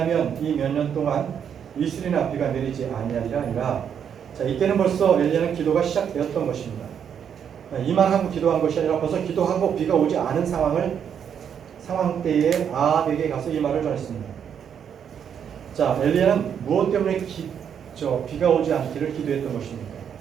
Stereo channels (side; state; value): left; quieter; 8.1 dB